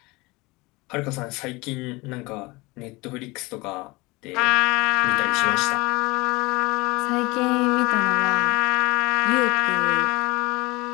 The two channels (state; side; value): quieter; right; 23.4 dB